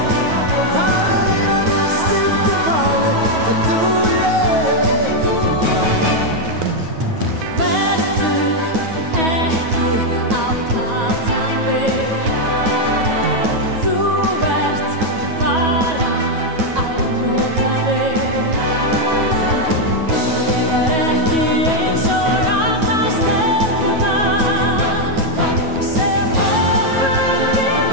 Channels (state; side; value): late; left; 9.3 ms